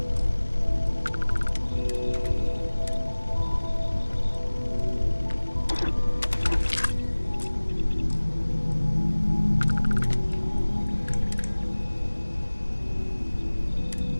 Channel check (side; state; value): both; inverted; correlation -1.00